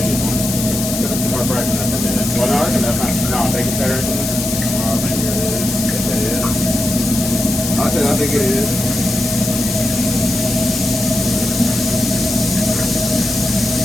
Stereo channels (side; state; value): left; noise; hiss, 5 dB below the sound